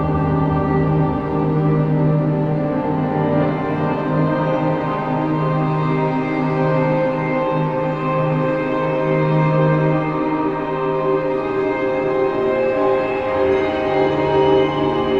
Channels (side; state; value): both; identical; correlation 1.00